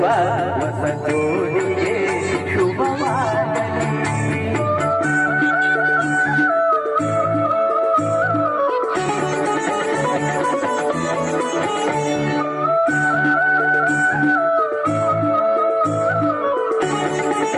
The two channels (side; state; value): both; identical; correlation 1.00